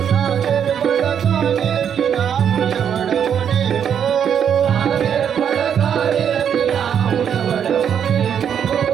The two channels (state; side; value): quieter; left; 8.4 dB